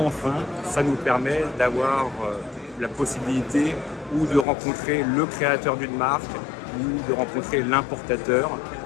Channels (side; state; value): right; drops out; at 4.5 s